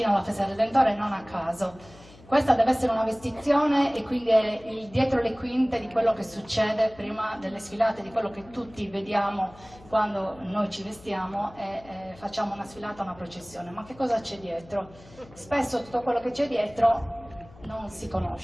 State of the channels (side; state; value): left; noise; hum, 23 dB below the sound